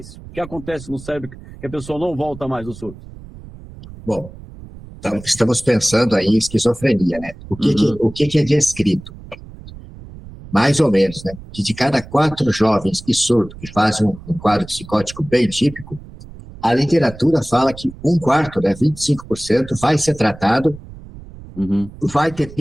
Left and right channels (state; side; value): noise; right; rumble, 17 dB below the sound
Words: O que acontece no cérebro que a pessoa não volta mais do surto? Bom, então estamos pensando aí em esquizofrenia, né? O que é descrito? Mais ou menos, né? Que de cada 4 jovens que surtam, que fazem um quadro psicótico bem típico, a literatura fala que 1/4, né, 25%, vai ser tratado, vai ter